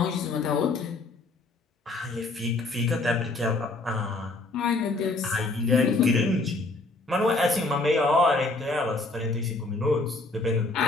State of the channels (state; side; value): quieter; right; 3.3 dB